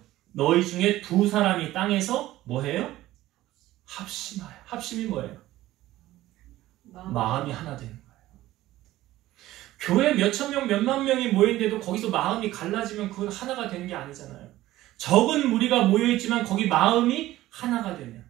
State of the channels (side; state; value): left; quieter; 15.7 dB